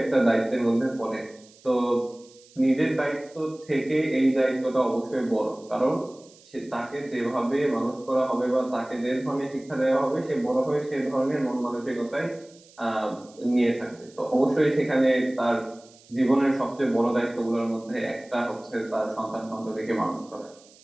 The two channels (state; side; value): noise; right; hiss, 26 dB below the sound